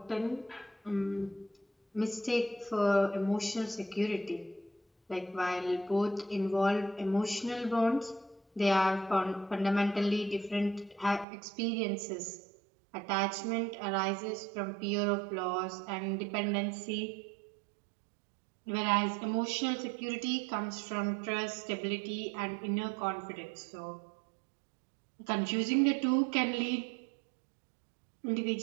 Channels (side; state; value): left; drops out; at 11.2 s